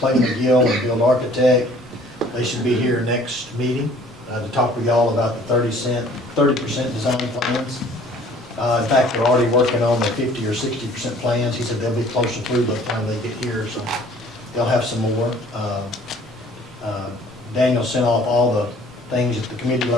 McGill and Build Architect. They should be here next meeting to talk with y'all about the 30% design plans. In fact, they're already working on the 50 or 60% plans. He said they'll be closer through by the time they get here, so they'll have some more. Daniel sent off all the things that the committee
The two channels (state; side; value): normal; both; correlation 0.54